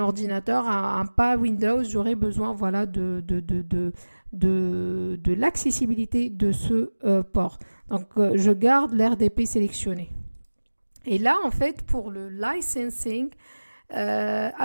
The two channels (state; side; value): inverted; both; correlation -1.00